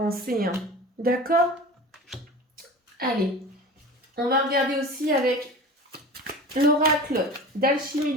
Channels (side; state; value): both; normal; correlation 0.35